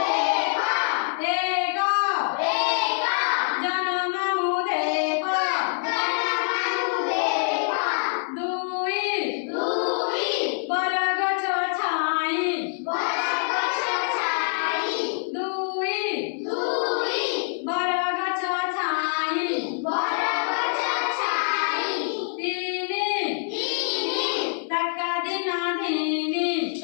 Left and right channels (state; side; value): silent; right; 62 dB below the other